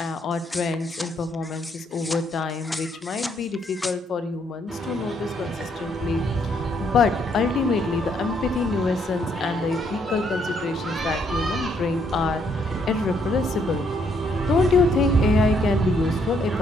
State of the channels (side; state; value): both; normal; correlation 0.71